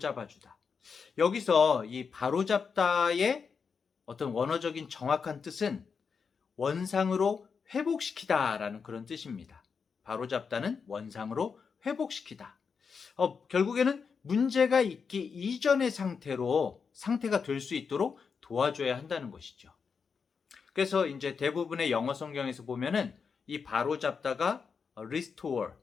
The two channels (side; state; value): right; quieter; 5.8 dB